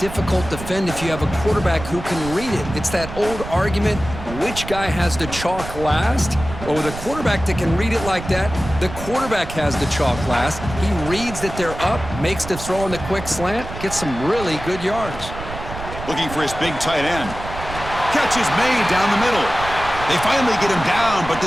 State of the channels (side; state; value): right; noise; rumble, 10 dB below the sound